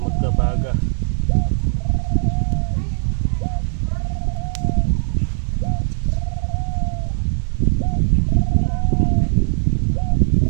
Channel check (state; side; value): silent; left; 66 dB below the other